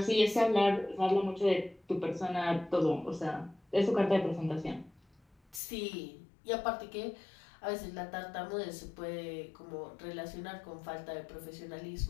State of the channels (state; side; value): drops out; right; at 5.6 s